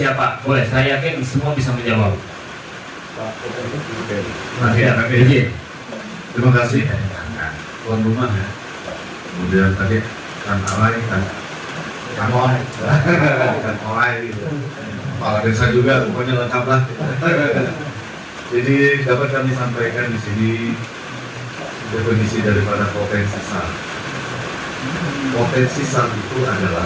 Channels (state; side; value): identical; both; correlation 1.00